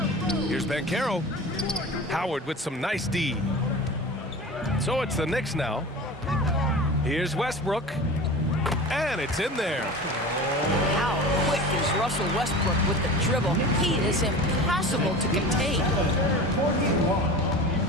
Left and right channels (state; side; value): normal; both; correlation 0.34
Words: Here's Banchero. Howard with some nice D. So it's the Knicks now. Here's Westbrook. And it's in there. How quick is Russell Westbrook with the dribble? He is impossible to contain.